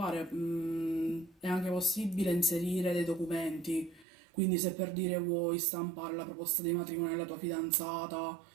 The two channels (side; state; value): left; drops out; at 4.0 s